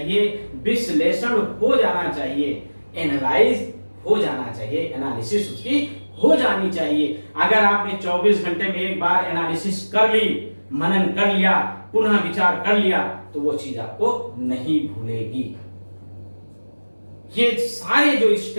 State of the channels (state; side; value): inverted; both; correlation -1.00